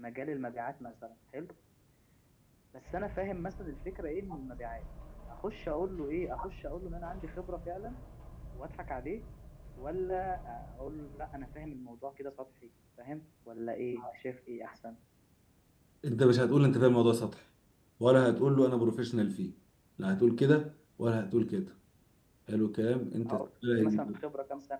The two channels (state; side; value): identical; both; correlation 1.00